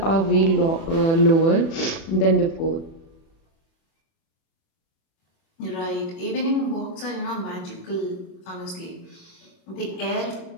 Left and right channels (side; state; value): right; late; 36 ms